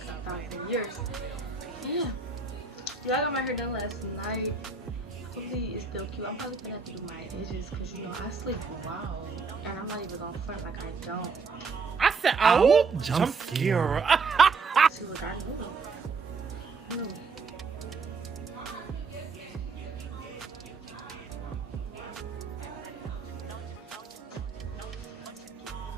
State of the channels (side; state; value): left; quieter; 4.7 dB